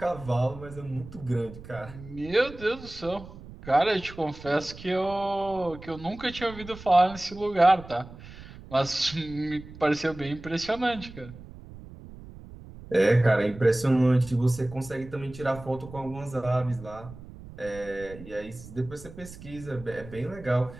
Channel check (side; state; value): right; noise; rumble, 16 dB below the sound